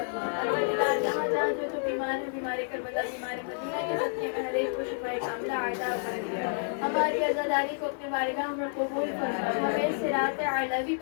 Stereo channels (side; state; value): right; silent; 58 dB below the other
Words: جہاں جہاں جو بیمار ہے بیمار کربلا بیمار مدینہ کے صدقے میں ہر ایک کو شفائے کاملہ عطا فرما. ہماری عزاداری کو اپنے بارگاہ میں قبول فرما. ہمیں صراط اعلیٰ